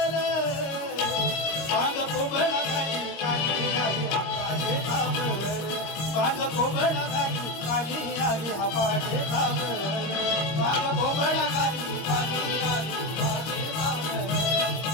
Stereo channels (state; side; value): late; right; 26 ms